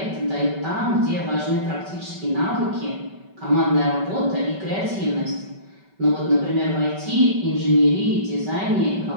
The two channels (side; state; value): left; late; 5.2 ms